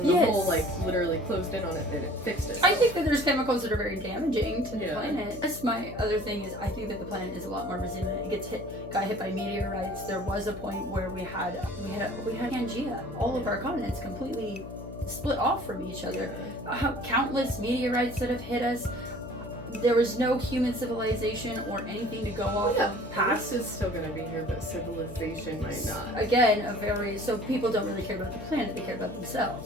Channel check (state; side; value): noise; left; hum, 12 dB below the sound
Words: the hole, like, literally closed in on it, and it fixed it. I think that there's chemicals that are very damaging to the planet. That's my other thing, is I think that the planet is a lot more resilient. It got hit by meteorites. There was a point where we had Pangea. All of our continents completely split off from each other. Countless meteorites that have hit us. There was no human civilization or anything to go off of past. This is still going to be here, but civilization might not. Again, so people don't really care about the planet, they care about